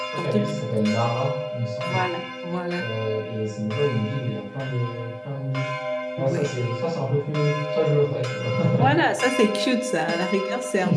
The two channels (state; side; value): identical; both; correlation 1.00